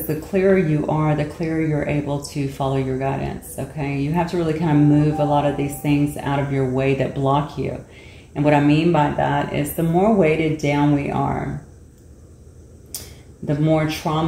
the clearer you are, the clearer you're able to follow your guidance, okay? You have to really kind of move a lot of these things out of your way that block you. And what I mean by that is the more weighted down we are, the more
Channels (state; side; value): identical; both; correlation 1.00